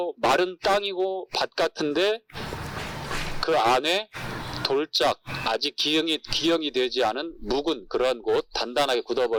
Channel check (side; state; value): both; identical; correlation 1.00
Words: 마른 땅이고 밭 같은데 그 안에 돌짝 아직 기형이 되지 않은 묵은 그런 곳, 단단하게